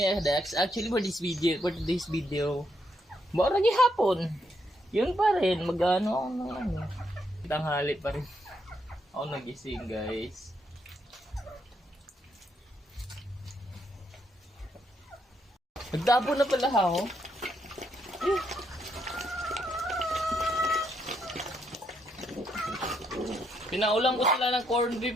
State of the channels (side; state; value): both; normal; correlation 0.76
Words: mga Dax. Actually for today's video, mura hapon. Yun pa rin, mag-ano ako ng ano. Tanghali pa rin. Ako nagising guys. Nagtapo na pala ako. Pinaulang ko sila ng corned beef